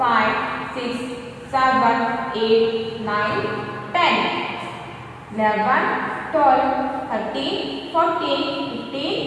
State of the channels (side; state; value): both; identical; correlation 1.00